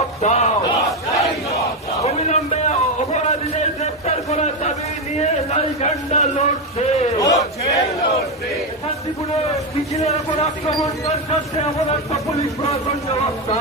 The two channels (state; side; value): normal; both; correlation 0.09